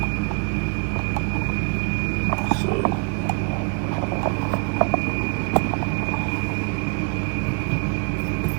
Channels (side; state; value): left; quieter; 37.0 dB